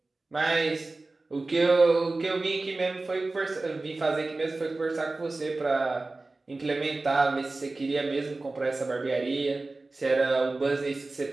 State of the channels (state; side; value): quieter; left; 3.3 dB